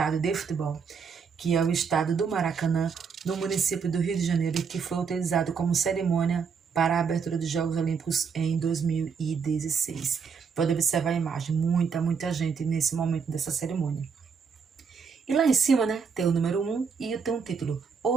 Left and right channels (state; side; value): quieter; left; 6.0 dB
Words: de futebol, que é o estádio do Maracanã, no município do Rio de Janeiro, que foi utilizado como cerimônia para a abertura dos Jogos Olímpicos em 2016. Pode observar a imagem, muita gente nesse momento dessa cerimônia. E lá em cima, né, tem o número 1 e tem um título,